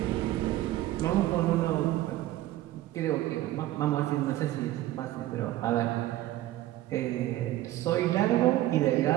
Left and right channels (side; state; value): left; quieter; 15.1 dB